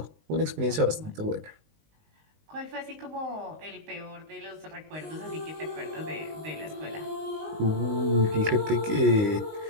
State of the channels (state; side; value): late; left; 19 ms